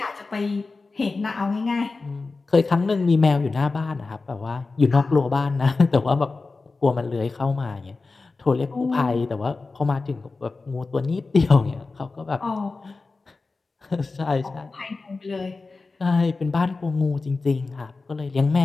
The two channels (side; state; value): right; quieter; 3.8 dB